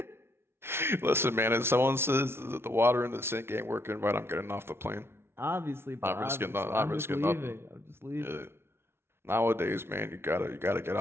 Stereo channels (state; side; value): late; left; 0.12 ms